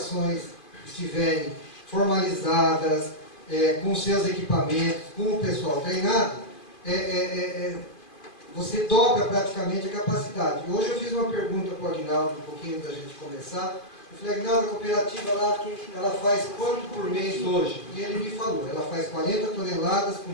estiverem formalizadas, com seus equipamentos, com o pessoal treinado, você dobra praticamente a capacidade. Hoje eu fiz uma pergunta para o Aguinaldo, um pouquinho da gente começar. Eu falei, Aguinaldo, a cooperativa lá, ela faz quanto por mês hoje? E ele me falou, ela faz 40 toneladas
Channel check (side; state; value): right; late; 2.5 ms